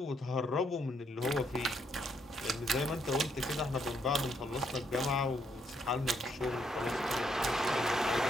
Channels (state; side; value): normal; both; correlation 0.74